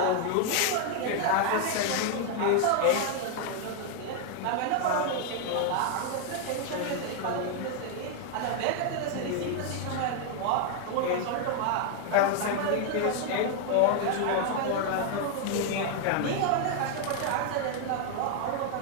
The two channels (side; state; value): both; different; correlation 0.00